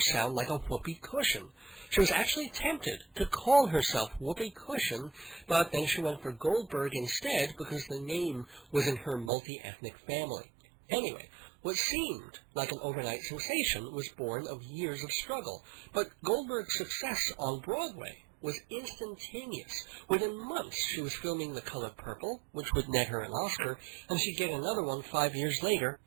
like a whoopee cushion. She was actually tempted to call herself Whoopi Cushion, but then she went for Goldberg instead because the name was in her multi-ethnic family. Anyway, what seemed like an overnight sensation was born of years of struggle, but Goldberg's success on Broadway was instantaneous. Within months, she was filming The Color Purple, which would net her an Oscar, and she'd get another one 5 years later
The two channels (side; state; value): left; drops out; at 9.3 s